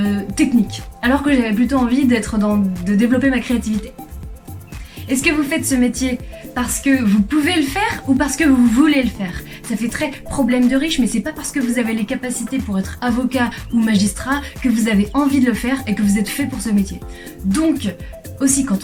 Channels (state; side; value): identical; both; correlation 1.00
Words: technique, alors que j'avais plutôt envie de développer ma créativité. Est-ce que vous faites ce métier parce que vous pouvez le faire ou parce que vous voulez le faire? Ça fait très problème de riche, mais c'est pas parce que vous avez les capacités pour être avocat ou magistrat que vous avez envie de le faire et que vous êtes fait pour ce métier. Donc, aussi